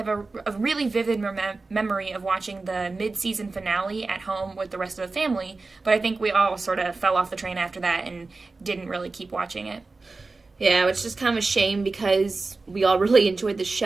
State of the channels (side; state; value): left; quieter; 3.7 dB